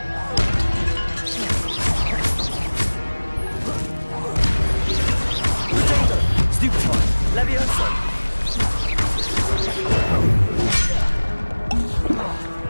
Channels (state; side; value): inverted; both; correlation -1.00